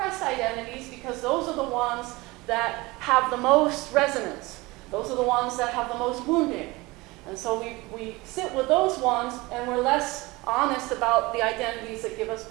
identities because those are the ones that have the most resonance. Those are the ones that have the most wounding. And so we sit with those ones, and we're less honest about the identities that give us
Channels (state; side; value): quieter; left; 22.5 dB